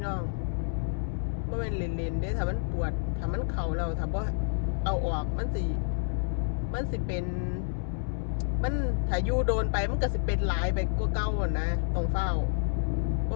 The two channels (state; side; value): silent; right; 58 dB below the other